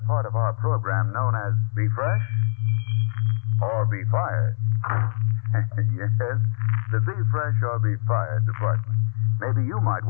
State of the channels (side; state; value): right; silent; 60 dB below the other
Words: part of our program known as Be Fresh or Be Fired. Yes, the Be Fresh or Be Fired department. Maybe you might